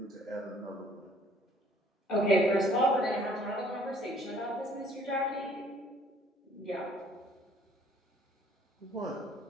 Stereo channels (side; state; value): both; normal; correlation 0.59